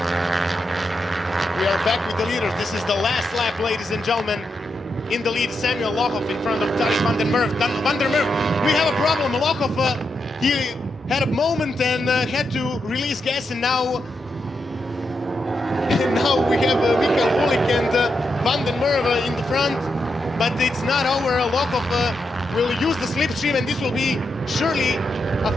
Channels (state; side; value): normal; both; correlation 0.84